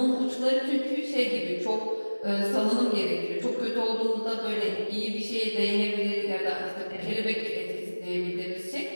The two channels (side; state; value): both; inverted; correlation -1.00